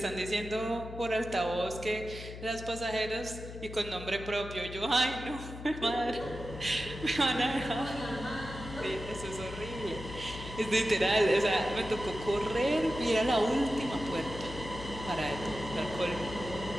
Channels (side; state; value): left; noise; hum, 11 dB below the sound